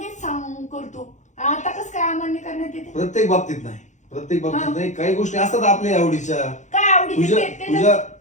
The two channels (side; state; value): right; late; 0.35 ms